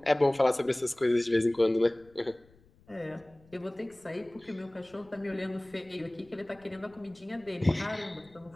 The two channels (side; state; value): left; noise; rumble, 28 dB below the sound